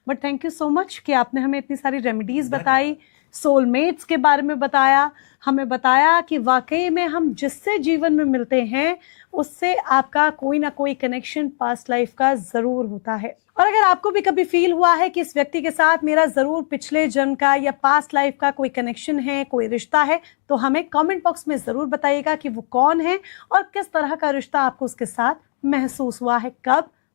But thank you so much कि आपने हमें इतनी सारी रेमेडीज बताई, सोलमेट्स के बारे में बताया, हमें बताया कि वाकई में हम जिससे जीवन में मिलते हैं उससे आपका कोई ना कोई कनेक्शन पास्ट लाइफ का जरूर होता है। और अगर आपको भी कभी फील हुआ है कि इस व्यक्ति के साथ मेरा जरूर पिछले जन्म का या पास्ट लाइफ का कोई कनेक्शन है, कोई रिश्ता है, तो हमें कमेंट बॉक्स में जरूर बताइएगा कि वो कौन है और किस तरह का रिश्ता आपको उसके साथ महसूस हुआ है, कब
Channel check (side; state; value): right; silent; digital silence